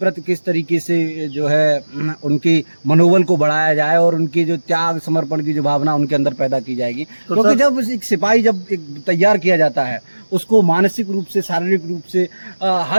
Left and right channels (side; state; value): both; inverted; correlation -1.00